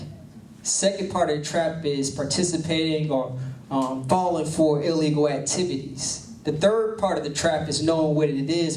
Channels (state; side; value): identical; both; correlation 1.00